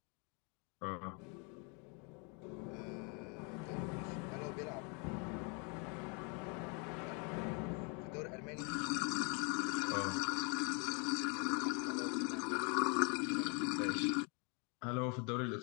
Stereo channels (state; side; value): quieter; right; 34.4 dB